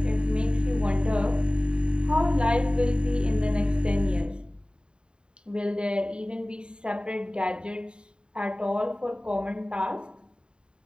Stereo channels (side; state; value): left; late; 0.051 ms